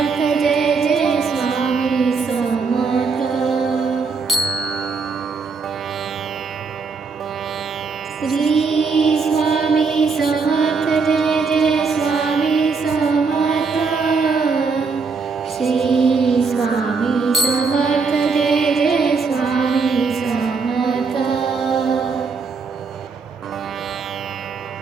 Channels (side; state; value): left; quieter; 4.8 dB